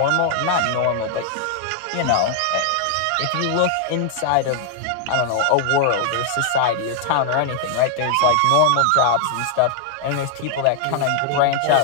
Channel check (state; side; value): different; both; correlation 0.00